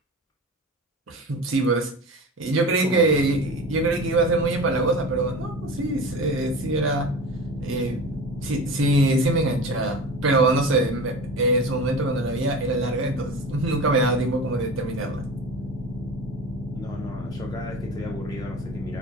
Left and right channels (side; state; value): both; normal; correlation 0.33